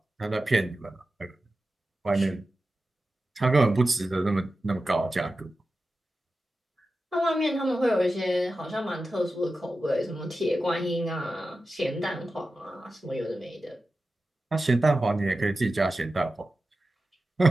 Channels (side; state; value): both; normal; correlation 0.93